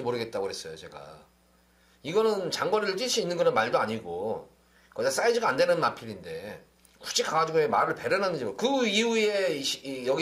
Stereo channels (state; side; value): identical; both; correlation 1.00